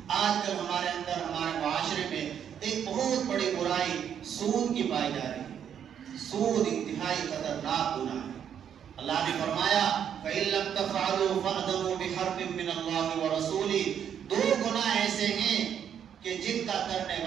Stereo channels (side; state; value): left; quieter; 8.7 dB